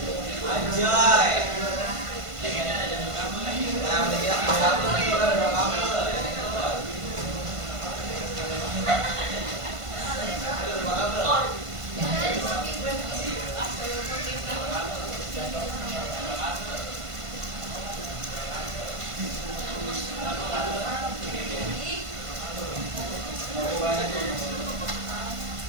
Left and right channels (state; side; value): late; left; 1.5 ms